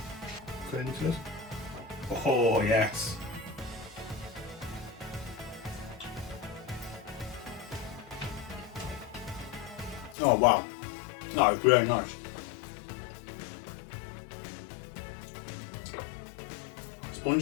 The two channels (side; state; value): right; drops out; at 10.2 s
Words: Oh, yes. Oh, wow. No, it's really nice.